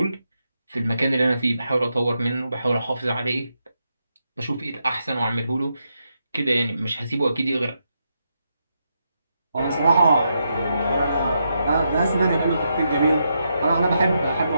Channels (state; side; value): inverted; both; correlation -0.82